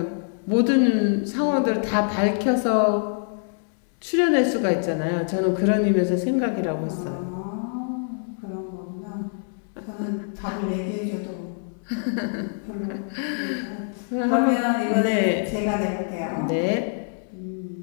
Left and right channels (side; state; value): right; silent; digital silence